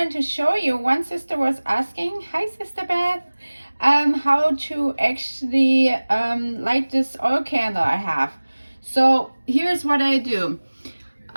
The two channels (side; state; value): both; inverted; correlation -1.00